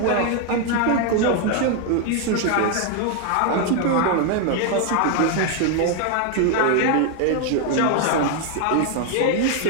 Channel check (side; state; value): both; different; correlation 0.01